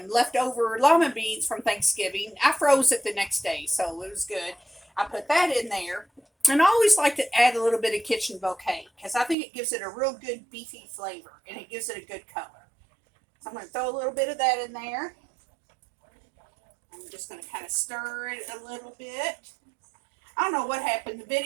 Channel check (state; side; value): drops out; left; at 9.3 s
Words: leftover lima beans from Thanksgiving. I froze it the next day, so it was good. I put that in there. And I always like to add a little bit of kitchen bouquet because I think it gives it a real good beefy flavor and it gives it a good color. So I'm going to throw a little bit of that in there. I'm just going to kind of stir it a little bit. I don't know what happened.